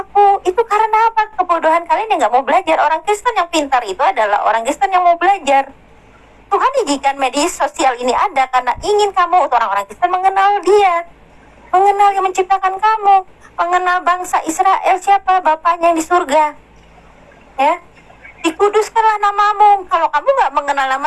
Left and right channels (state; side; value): identical; both; correlation 1.00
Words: Itu karena apa? Kebodohan kalian yang nggak mau belajar. Orang Kristen yang pintar itu adalah orang Kristen yang mau belajar. Tuhan izinkan media sosial ini ada karena ingin kamu, orang-orang Kristen, mengenal Dia, mengenal yang menciptakan kamu, mengenal bangsa Israel siapa Bapaknya yang di surga. Ya, dikuduskanlah namamu. Kalau kamu nggak mengenal